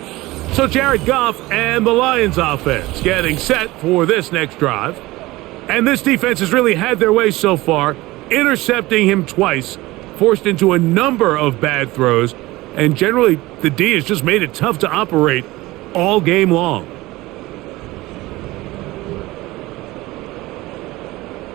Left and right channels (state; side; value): quieter; left; 19.3 dB